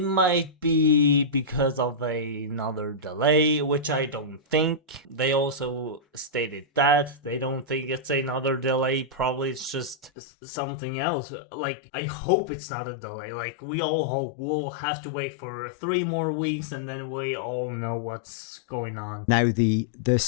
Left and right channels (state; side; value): drops out; right; at 10.1 s